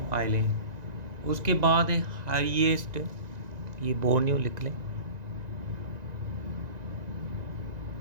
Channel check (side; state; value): left; late; 1.9 ms